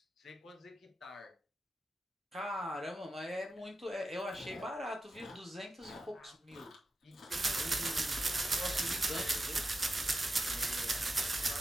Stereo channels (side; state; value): both; normal; correlation 0.90